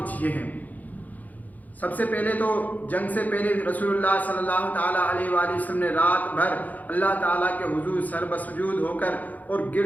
یہ ہیں۔ سب سے پہلے تو جنگ سے پہلے رسول اللہ صلی اللہ تعالیٰ علیہ وآلہ وسلم نے رات بھر اللہ تعالیٰ کے حضور سر بسجود ہو کر اور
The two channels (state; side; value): late; right; 0.079 ms